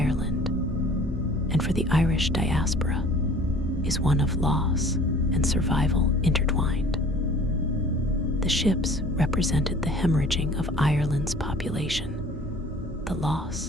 and for the Irish diaspora is one of loss and survival intertwined. The ships represented the hemorrhaging of Ireland's population, the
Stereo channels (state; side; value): normal; both; correlation 0.49